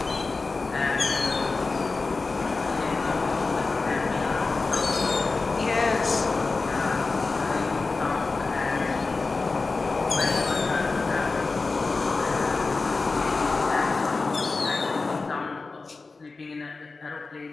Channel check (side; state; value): right; quieter; 3.9 dB